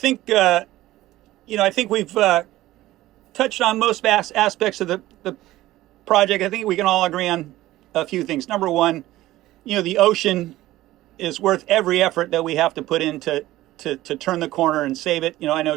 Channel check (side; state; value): left; quieter; 16.0 dB